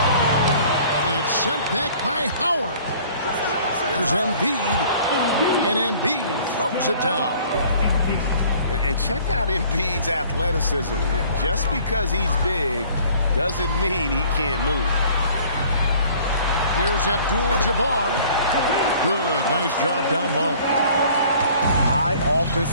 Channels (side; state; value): both; inverted; correlation -0.52